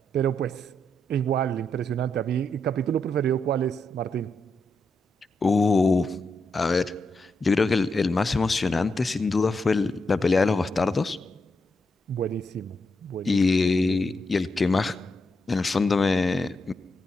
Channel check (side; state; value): both; normal; correlation 0.82